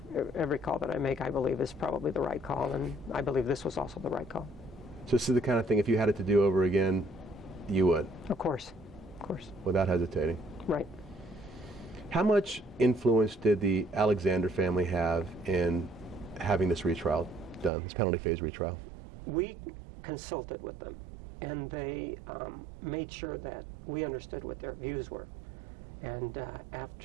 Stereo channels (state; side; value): drops out; left; at 17.7 s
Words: call that I make, I believe, is probably the right call, and I believe this was also the right call. So this is the kind of thing, if you had it to do over again, you would? Of course. Without hesitating? Right. How much influence did the Alexander family have in having this retrial done, this penalty phase retrial? We consulted with them, and they made sure that we understood what their views were. And